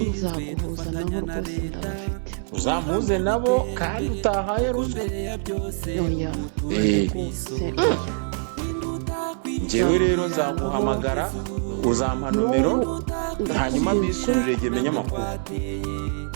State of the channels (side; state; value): left; silent; 62 dB below the other